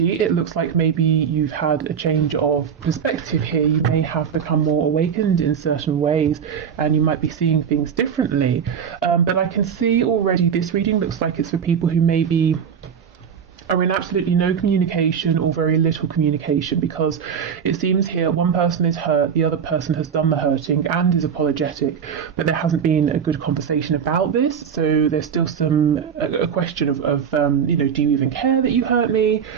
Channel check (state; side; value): quieter; left; 7.4 dB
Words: it looks like maybe you've had a change of perspective here. You may have become more awakened in certain ways, and you might be seeing things differently. But I can see already this reading looks like it's for people who maybe are in absolutely no communication or very little communication, because it seems here one person is hurt, the other person has done the hurting and is apologetic, but there hasn't been a good conversation about this. So there's still a question of do you even care that you hurt me?